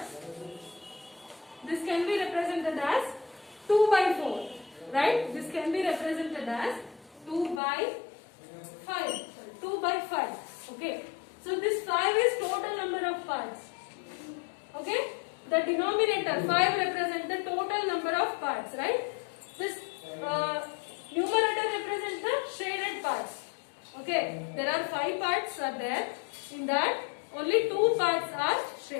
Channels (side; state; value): right; drops out; at 7.6 s